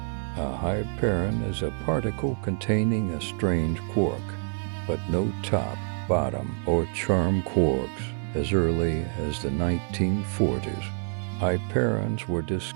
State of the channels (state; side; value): silent; left; 57 dB below the other